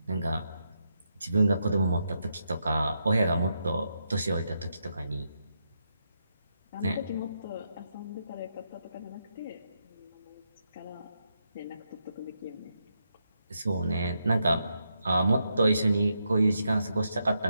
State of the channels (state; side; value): inverted; both; correlation -0.82